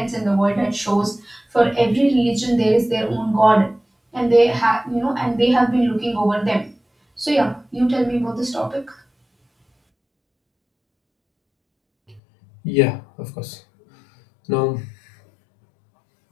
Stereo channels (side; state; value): right; drops out; at 12.2 s